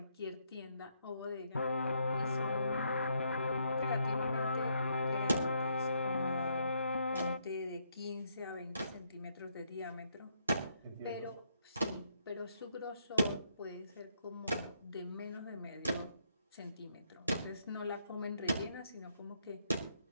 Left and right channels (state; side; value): inverted; both; correlation -0.74